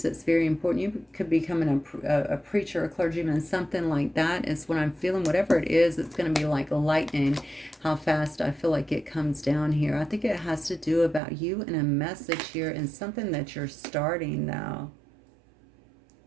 that's very important. You could be becoming a preacher, a clergyman, something like that is what I'm feeling. Whatever it is, it's going to be like lightning, how fast I feel like it comes down here. I think it has to do about you and a message here, and something that you're starting now.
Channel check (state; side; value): drops out; left; at 11.2 s